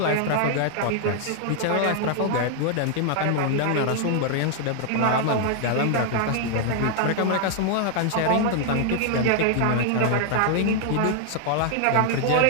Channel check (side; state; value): both; different; correlation 0.00